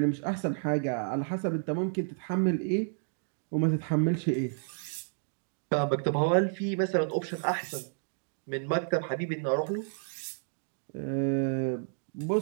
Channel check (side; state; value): left; silent; digital silence